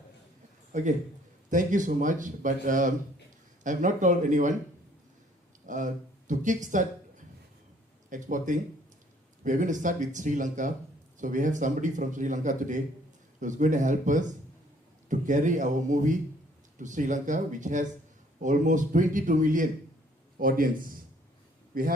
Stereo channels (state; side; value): normal; both; correlation 0.61